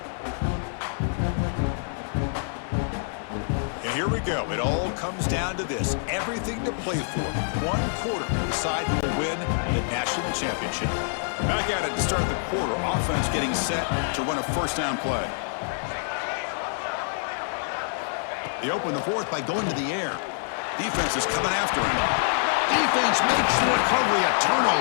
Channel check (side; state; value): right; silent; digital silence